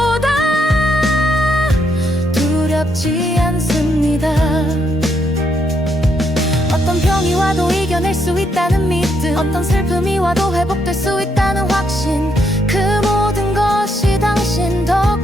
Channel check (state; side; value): normal; both; correlation 0.76